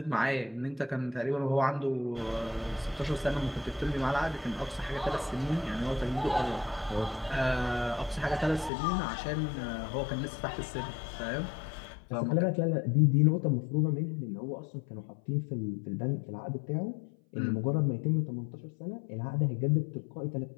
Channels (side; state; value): right; drops out; at 8.7 s